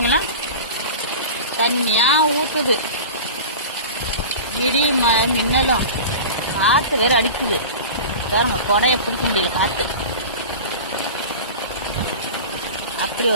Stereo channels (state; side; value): inverted; both; correlation -0.33